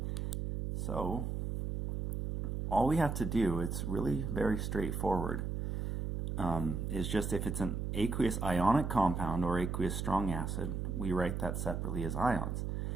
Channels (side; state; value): right; noise; hum, 2 dB below the sound